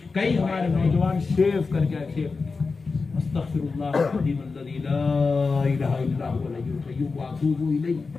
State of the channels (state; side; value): quieter; right; 4.3 dB